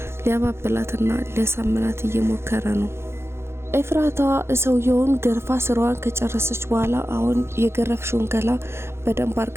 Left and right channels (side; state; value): left; late; 0.12 ms